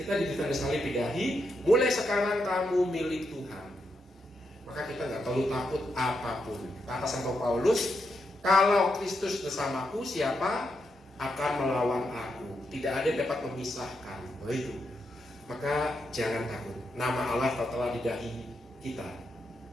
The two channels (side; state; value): both; normal; correlation 0.83